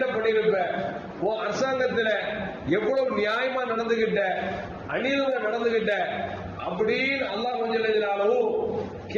பண்ணிருப்ப, உன் அரசாங்கத்துல எவ்வளவு நியாயமா நடந்துகிட்ட, அநீதமா நடந்துகிட்ட அப்படின்னு அல்லாஹ் கொஞ்சம்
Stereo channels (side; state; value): both; identical; correlation 1.00